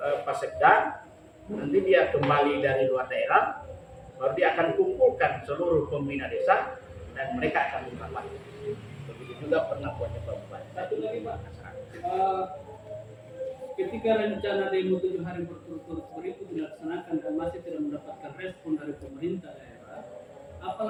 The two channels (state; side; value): identical; both; correlation 1.00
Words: Sekda, nanti dia kembali dari luar daerah, baru dia akan kumpulkan seluruh pembina desa dan mereka akan merapat. Begitu juga pernah buatnya Pak Bupati. Satu lagi Pak, ketika rencana demo 7 hari berturut-turut itu dilaksanakan dan masih tidak mendapatkan respon dari pemerintah daerah, apa